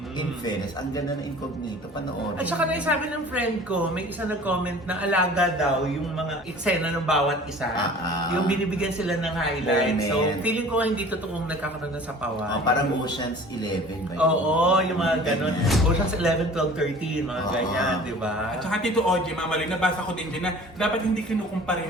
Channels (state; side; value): normal; both; correlation 0.45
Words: In fairness, ang ganda ng Incognito, panoorin. At saka naisabi ng friend ko, may isa nag-comment na alaga daw yung mga eksena ng bawat isa. Yung binibigyan sila ng highlights. So, Moment. feeling ko hindi totoong nagkakaroon ng sapawan. Parang Ocean's 11 ba yun? Oo, yung mga ganun. Ganyan. Ocean's 11, 12, 13, mga Oo. ganyan, di ba? At saka Tito Ogie, Mama Loy, nabasa ko din dyan na dapat hindi kinukumpara